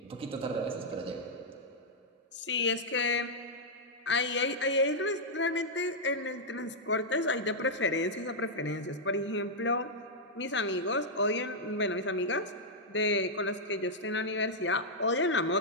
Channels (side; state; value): both; normal; correlation -0.06